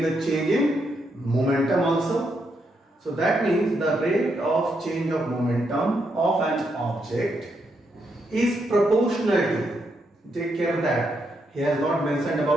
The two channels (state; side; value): normal; both; correlation 0.80